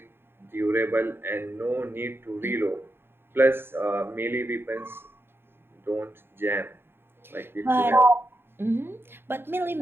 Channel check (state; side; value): late; left; 0.11 ms